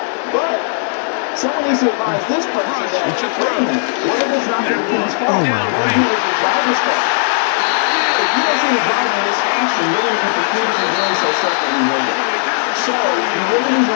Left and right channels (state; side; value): silent; right; digital silence